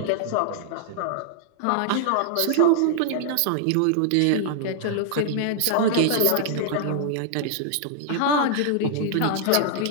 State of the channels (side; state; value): both; different; correlation 0.00